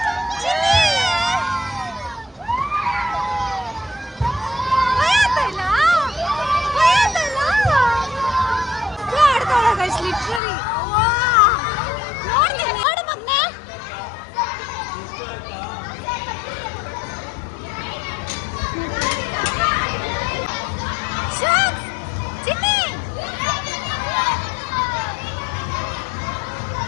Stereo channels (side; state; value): right; drops out; at 10.4 s